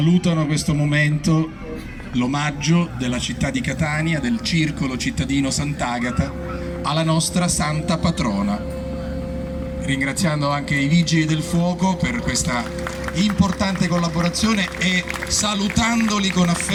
questo momento, l'omaggio della città di Catania, del Circolo Cittadino Sant'Agata, alla nostra santa patrona. Ringraziando anche i Vigili del Fuoco per questa importante collaborazione e salutandoli con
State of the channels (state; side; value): identical; both; correlation 1.00